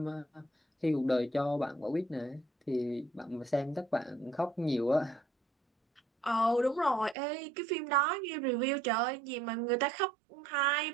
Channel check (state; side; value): drops out; left; at 7.2 s